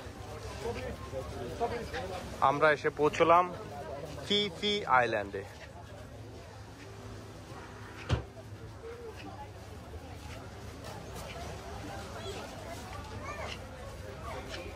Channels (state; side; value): identical; both; correlation 1.00